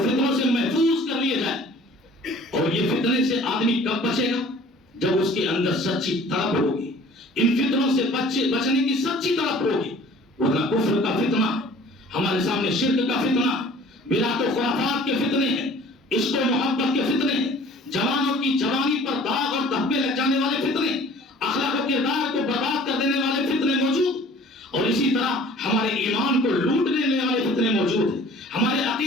سے محفوظ کر لیے جائیں. اور یہ فتنے سے آدمی کب بچے گا؟ جب اس کے اندر سچی طلب ہوگی، ان فتنوں سے بچنے کی سچی طلب ہوگی. ورنہ کفر کا فتنہ، ہمارے سامنے شرک کا فتنہ، بدعت و خرافات کے فتنے ہیں، عشق و محبت کے فتنے ہیں، جوانوں کی جوانی پر داغ اور دھبے لگ جانے والے فتنے، اخلاق و کردار کو برباد کر دینے والے فتنے موجود، اور اسی طرح ہمارے ایمان کو لوٹ لینے والے فتنے موجود ہیں، ہمارے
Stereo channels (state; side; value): normal; both; correlation 0.49